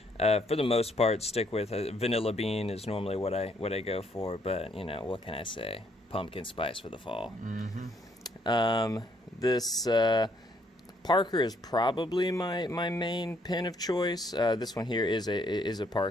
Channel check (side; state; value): both; normal; correlation 0.69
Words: for the most part stick with vanilla bean is normally what I go for, but you know, what can I say? Pumpkin spice for the fall. This Parker is probably my main pen of choice. This one here is a